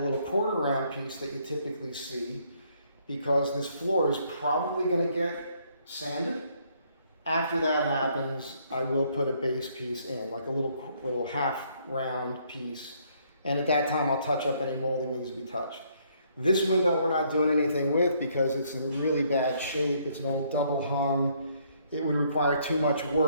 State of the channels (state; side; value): inverted; both; correlation -0.68